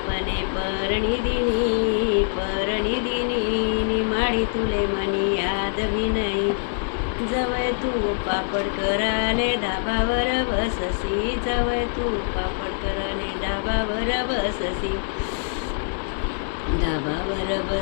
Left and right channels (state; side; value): silent; right; 63 dB below the other